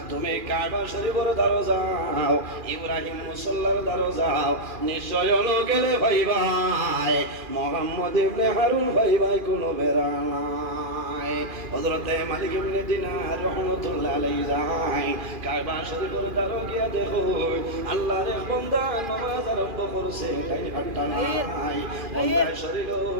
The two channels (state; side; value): late; left; 2.4 ms